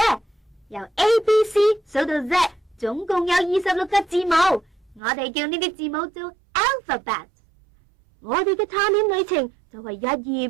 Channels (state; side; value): drops out; left; at 5.0 s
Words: 由 A、B、C 數到 Z， 總共有26個字母，我哋叫呢啲字母做 alphabet。我哋嘅探險旅程就係一頁